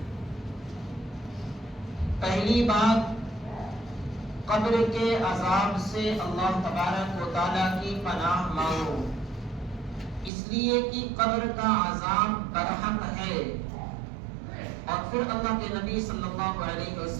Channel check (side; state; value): left; drops out; at 10.3 s